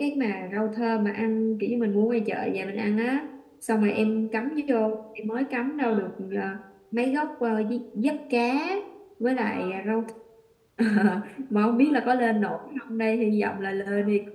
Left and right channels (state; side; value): identical; both; correlation 1.00